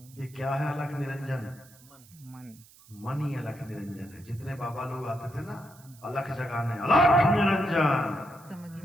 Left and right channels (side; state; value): right; noise; hiss, 24 dB below the sound